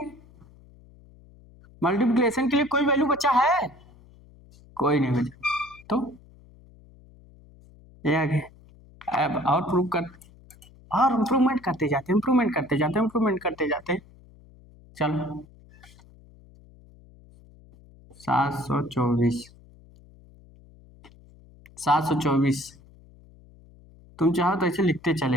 मल्टीप्लिकेशन के लिए कोई वैल्यू बचा है, कोई नहीं बचा, तो ये आ गया। अब और प्रूव कर, और इम्प्रूवमेंट करते जाते हैं, इम्प्रूवमेंट करते जाते हैं, इम्प्रूवमेंट करते जाते हैं, चलो 724 724, तुम चाहो तो ऐसे लिखते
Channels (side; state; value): left; noise; hum, 25 dB below the sound